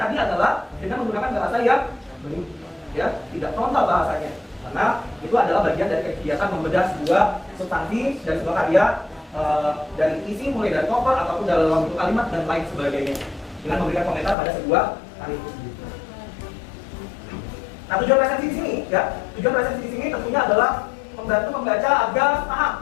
adalah dengan menggunakan bahasa yang ya, tidak frontal bahasanya. Karena itu adalah bagian dari kegiatan membedah sebuah substansi dan sebuah karya dari isi mulai dari cover ataupun dalam bentuk kalimat dan lain sebagainya dengan memberikan komentar pada sebuah karya itu sendiri. Nah, tujuan resensi di sini ya, tujuan resensi di sini tentunya adalah membantu membaca agar paham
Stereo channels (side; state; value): right; drops out; at 14.4 s